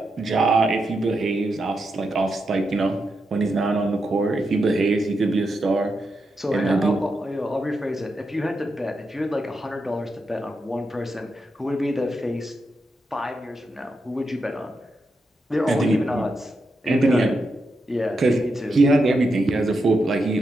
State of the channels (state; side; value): normal; both; correlation 0.85